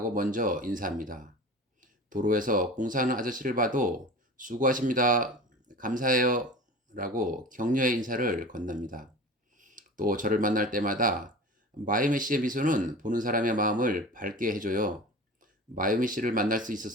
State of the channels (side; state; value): both; normal; correlation 0.35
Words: 먼저 인사합니다. 도로에서 공사하는 아저씨를 봐도 수고하십니다, 감사해요 라고 격려의 인사를 건넵니다. 또 저를 만날 때마다 마유미 씨의 미소는 보는 사람의 마음을 밝게 해줘요. 마유미 씨를 만날 수